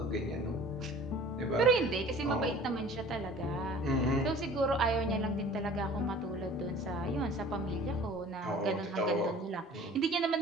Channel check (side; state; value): both; normal; correlation 0.46